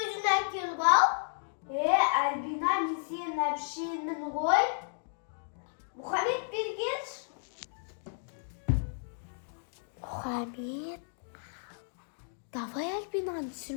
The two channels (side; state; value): right; silent; digital silence